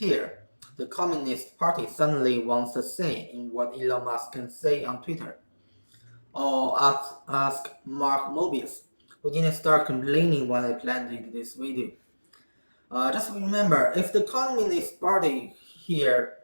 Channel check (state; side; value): inverted; both; correlation -1.00